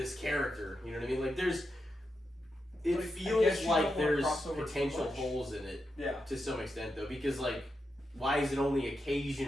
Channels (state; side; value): normal; both; correlation 0.86